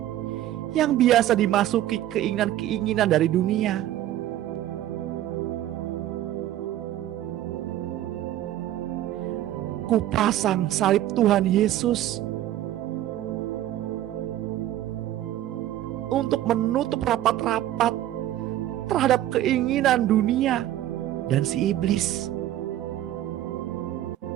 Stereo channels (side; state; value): left; quieter; 13.2 dB